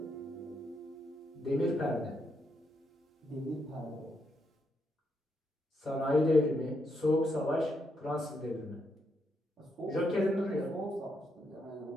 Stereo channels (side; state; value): both; normal; correlation 0.79